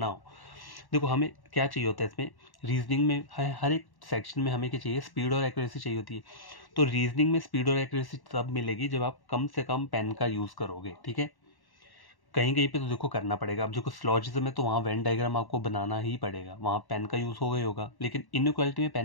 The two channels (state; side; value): late; right; 1.1 ms